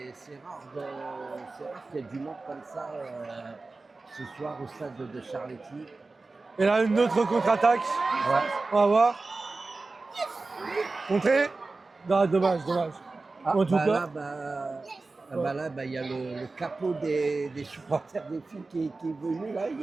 rare qu'il y ait du monde comme ça ce soir au stade de Charletti. Et là, une autre contre-attaque. Ouais. On va voir. Contré. Non, dommage. Ah, en tout cas. Là, il y a le capot des supporters des filles qui est venu. Là, il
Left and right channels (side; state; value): left; quieter; 3.6 dB